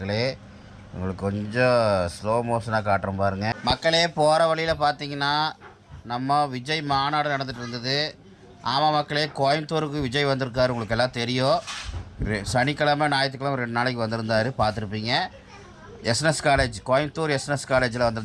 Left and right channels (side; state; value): both; identical; correlation 1.00